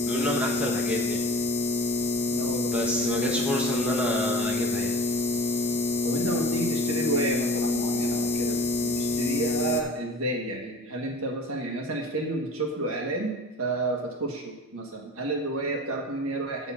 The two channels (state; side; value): normal; both; correlation 0.41